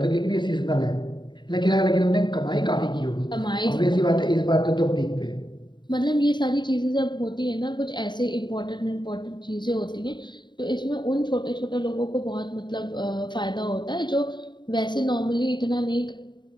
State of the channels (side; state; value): right; late; 0.22 ms